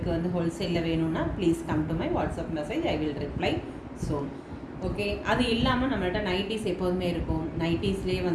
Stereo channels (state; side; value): identical; both; correlation 1.00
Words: வந்து ஹோல்சேலில் வேணும்னா please come to my WhatsApp message. I will reply soon. Okay. அது இல்லாமல் நம்மள்ட்ட நைட்டிஸ் எப்போதுமே இருக்கும். நைட்டிஸ்லேயே